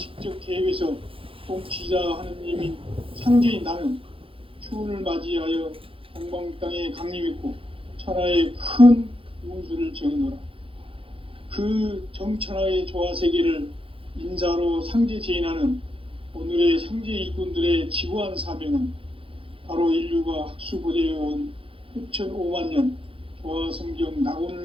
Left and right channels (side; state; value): left; late; 0.26 ms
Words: 개입해서 통치자 하느님인 상제인 나는 추운을 맞이하여 동방 땅에 강림했고 천하의 큰 운수를 정해노라. 그 정천하의 조화세계를 인자로 상제 제인하는 오늘의 상제 일꾼들의 지구한 사명은 바로 인류가 학수고대해온 6,500만 년 조화성경